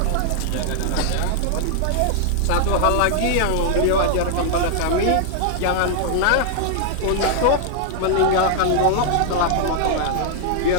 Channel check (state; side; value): different; both; correlation -0.01